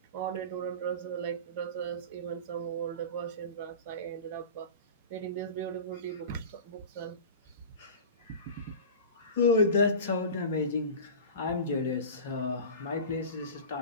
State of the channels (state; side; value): inverted; both; correlation -0.32